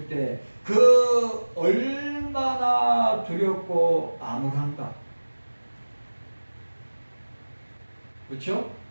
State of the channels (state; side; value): inverted; both; correlation -1.00